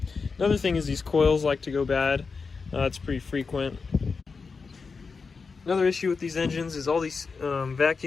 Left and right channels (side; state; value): right; quieter; 4.8 dB